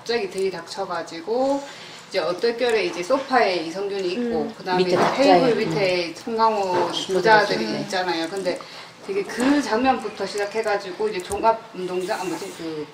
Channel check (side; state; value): both; identical; correlation 1.00